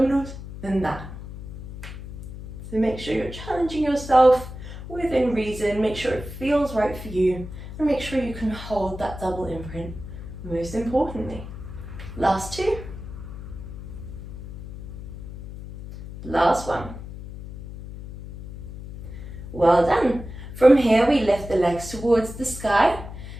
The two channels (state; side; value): noise; left; hum, 11 dB below the sound